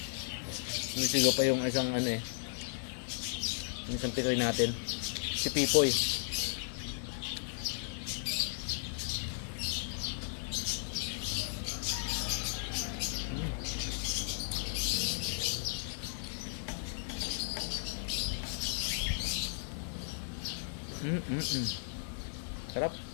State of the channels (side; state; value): right; silent; digital silence